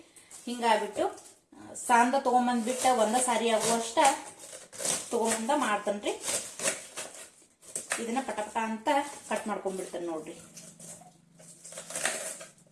ಹಿಂಗಾಗ್ಬಿಟ್ಟು ಸಾಂದ ತಗೊಂಬಂದ್ಬಿಟ್ಟ ಒಂದ ಸಾರಿ ಆಗುವಷ್ಟ ತಗೊಂಬಂದ ಮಾಡ್ತೇನ್ರಿ. ಇದನ್ನ ಪಟಪಟ ಅಂತ ಕಟ್ ಮಾಡ್ಕೊಂಡ್ಬಿಡ್ತೇನೆ ನೋಡ್ರಿ.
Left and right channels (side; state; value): both; identical; correlation 1.00